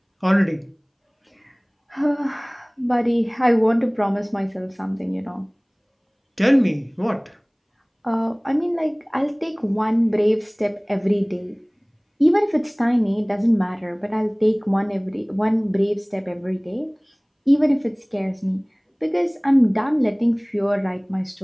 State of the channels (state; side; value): identical; both; correlation 1.00